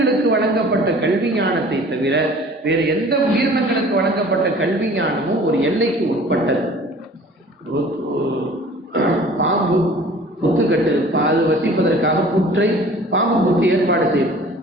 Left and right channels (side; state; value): both; normal; correlation 0.47